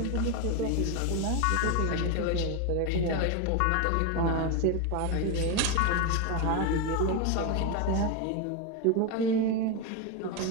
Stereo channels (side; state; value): both; different; correlation 0.02